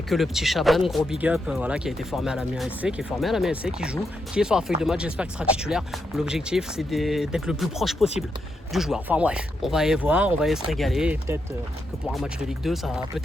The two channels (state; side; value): normal; both; correlation 0.82